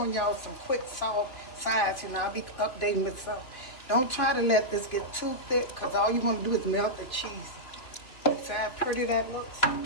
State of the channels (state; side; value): late; right; 3.0 ms